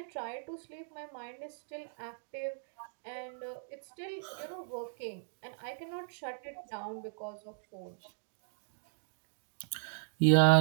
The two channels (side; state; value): left; silent; digital silence